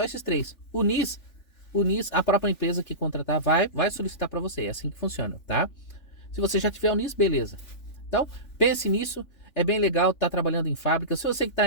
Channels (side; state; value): right; late; 3.5 ms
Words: esses três. O NIS, a própria empresa que contratar vai solicitar para você. É assim que funciona, tá? Se você já tiver o NIS, beleza. Então, pense nisso. É bem legal estar trabalhando em fábrica. Se você que